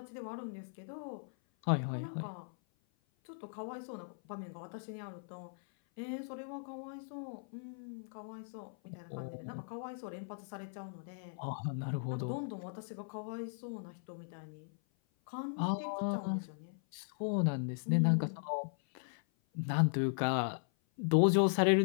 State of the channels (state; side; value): silent; right; 53 dB below the other